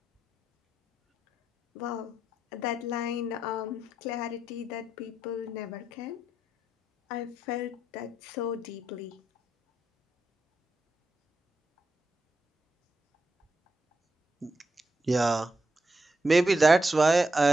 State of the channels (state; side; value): normal; both; correlation 0.84